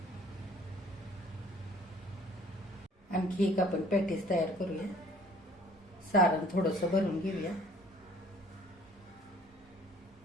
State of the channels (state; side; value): normal; both; correlation 0.54